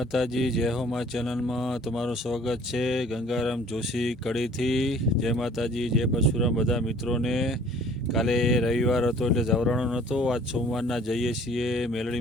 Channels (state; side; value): normal; both; correlation 0.53